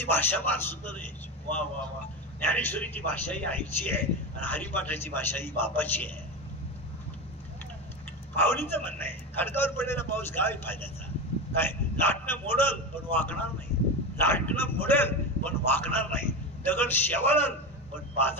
भाषा फार सुंदर आहे. वा वा वा. ज्ञानेश्वरीची भाषा ही आईची आहे आणि हरिपाठाची भाषा ही बापाची आहे. माऊलीचं म्हणणं आहे खडकावर पडलेला पाऊस काय फायद्याचा. काय लाटणं मोडल पण वाकणार नाही. लाटणं मोडेल पण वाकणार नाही, दगड शेवाळल पण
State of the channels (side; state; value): both; normal; correlation 0.21